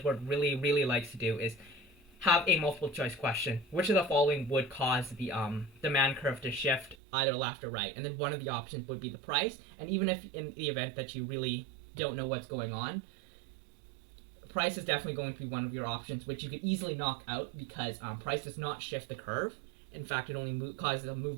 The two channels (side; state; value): left; drops out; at 7.0 s